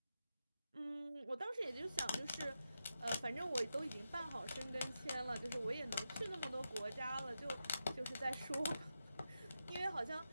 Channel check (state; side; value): inverted; both; correlation -0.88